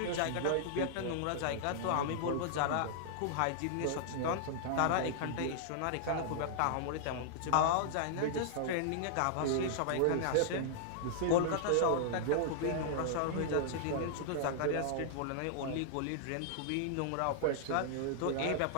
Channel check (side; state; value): both; different; correlation -0.01